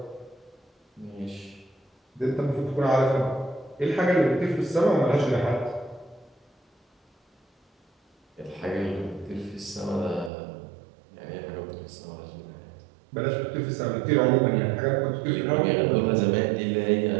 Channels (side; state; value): left; drops out; at 10.3 s